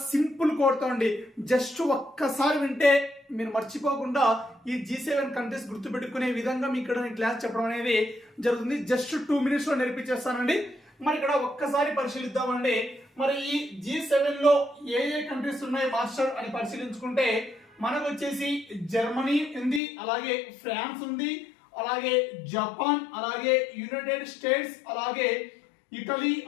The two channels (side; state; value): right; drops out; at 19.8 s